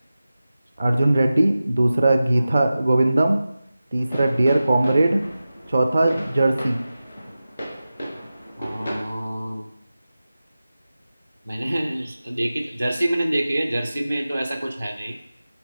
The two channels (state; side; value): inverted; both; correlation -0.94